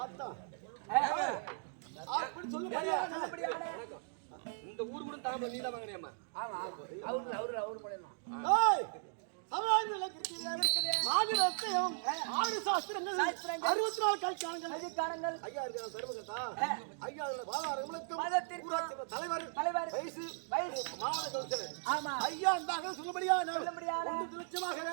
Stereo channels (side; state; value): left; silent; digital silence